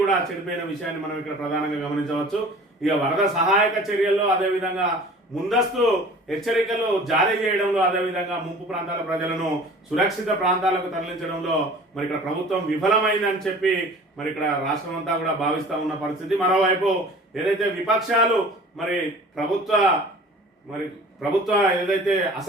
కూడా చెడిపోయిన విషయాన్ని మనం ఇక్కడ ప్రధానంగా గమనించవచ్చు. ఇక వరద సహాయక చర్యల్లో అదేవిధంగా ముందస్తు హెచ్చరికలు జారీ చేయడంలో అదేవిధంగా ముంపు ప్రాంతాల ప్రజలను సురక్షిత ప్రాంతాలకు తరలించడంలో ఇక్కడ ప్రభుత్వం విఫలమైందని చెప్పి ఇక్కడ రాష్ట్రం అంతా కూడా భావిస్తా ఉన్న పరిస్థితి. మరోవైపు ఏదైతే విపక్షాలు ప్రభుత్వ ఏదైతే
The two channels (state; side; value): normal; both; correlation 0.45